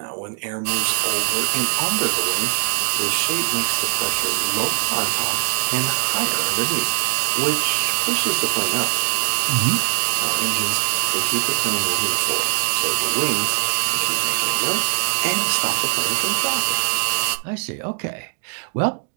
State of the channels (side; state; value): left; silent; 65 dB below the other